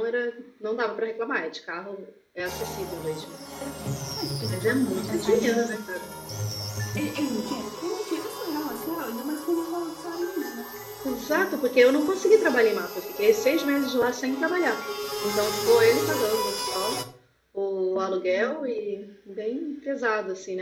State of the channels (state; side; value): identical; both; correlation 1.00